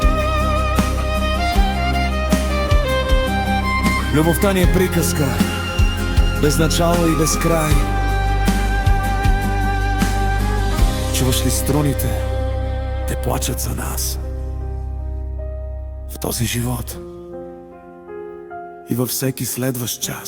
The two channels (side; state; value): both; identical; correlation 1.00